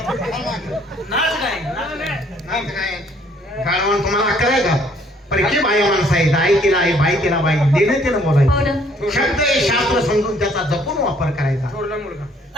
नाच काय गाडवान तुम्हाला अक्कल आहे का? परकी बाई माणसं आहे, आई तिला आहे, बाई तिला बाई, देणं तिनं बोलायचं. शब्द हे शास्त्र समजून त्याचा जपून वापर करायचा. थोरला मुलगा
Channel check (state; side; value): normal; both; correlation 0.62